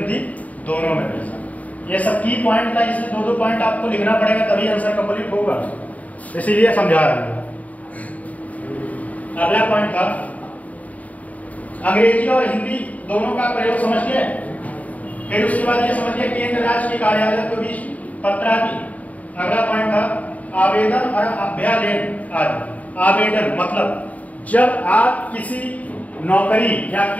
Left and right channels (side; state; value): right; late; 0.071 ms